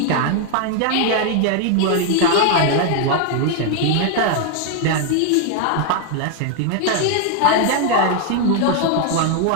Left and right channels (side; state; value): both; different; correlation 0.00